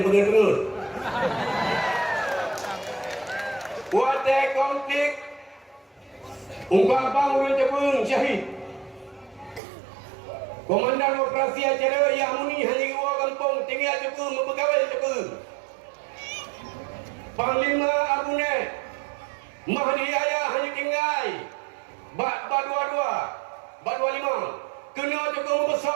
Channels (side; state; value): left; drops out; at 9.6 s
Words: Kuate konflik Ungkapang urun cepung syahid. Komandan operasi acara yang muni hanya dua kampung tinggal cepung mempegawai cepung. Panglima Abune Mahdi Ayah hanya tinggal Bat 25 kena cepung